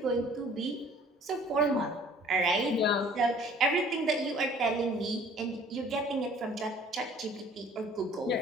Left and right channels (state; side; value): normal; both; correlation 0.53